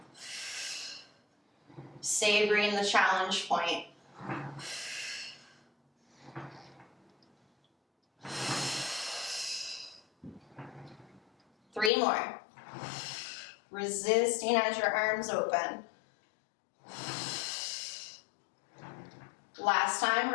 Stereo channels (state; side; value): drops out; right; at 11.9 s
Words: Savoring the challenge point. Three more. Resisting as your arms open. Last time,